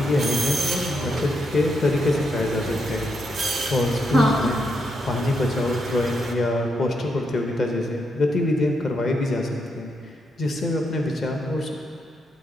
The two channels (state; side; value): normal; both; correlation 0.80